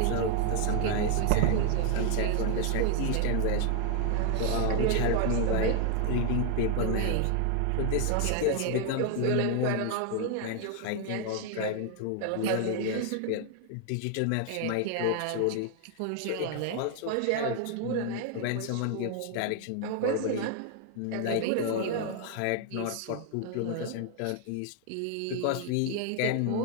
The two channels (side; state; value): both; different; correlation 0.00